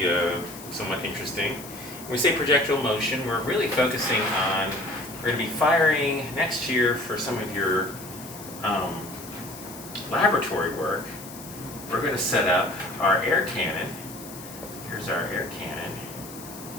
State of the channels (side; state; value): left; noise; hiss, 15 dB below the sound